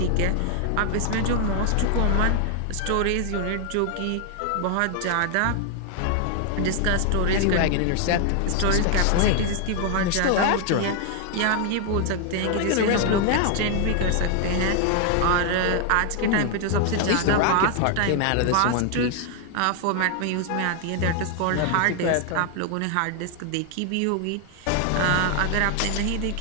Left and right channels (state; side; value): different; both; correlation 0.00